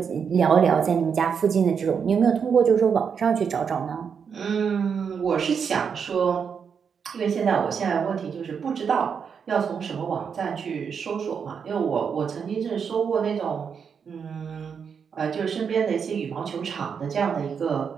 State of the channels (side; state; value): left; quieter; 6.7 dB